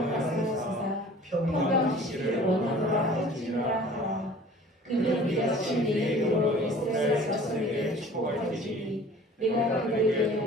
가사하시사 평강 주시기를 원하노라 할지니라 하라. 그들은 이같이 내 이름으로 이스라엘 자손에게 축복할지니 내가 그들에게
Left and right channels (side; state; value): both; normal; correlation 0.47